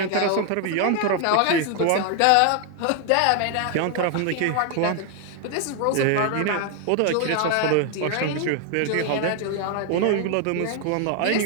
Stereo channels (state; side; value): different; both; correlation 0.00